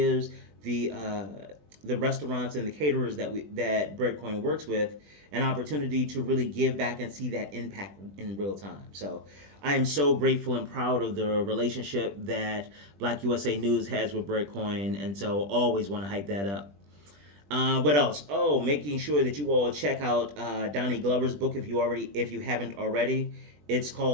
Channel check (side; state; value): left; late; 20 ms